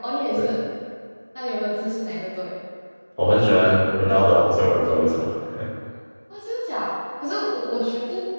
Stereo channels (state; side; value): inverted; both; correlation -1.00